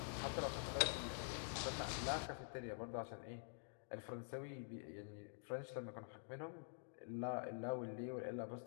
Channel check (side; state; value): right; silent; digital silence